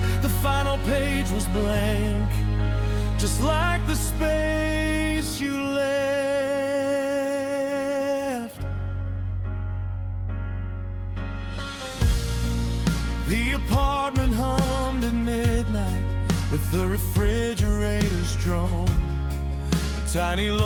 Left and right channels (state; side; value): identical; both; correlation 1.00